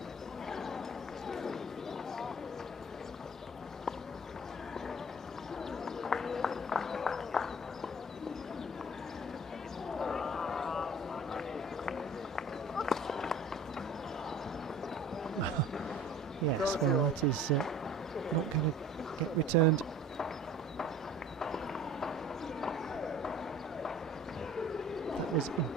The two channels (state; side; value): normal; both; correlation 0.46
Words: Yes, well, that is not going to get returned. That was